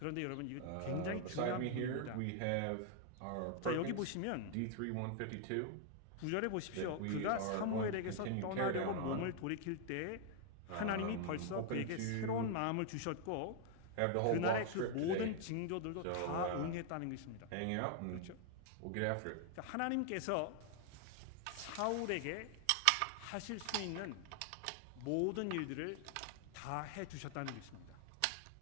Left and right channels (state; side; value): different; both; correlation 0.00